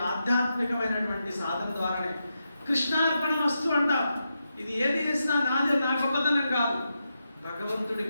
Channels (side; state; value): both; inverted; correlation -0.86